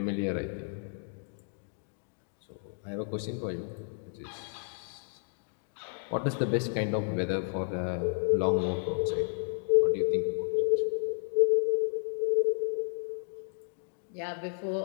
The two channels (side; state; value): right; silent; 56 dB below the other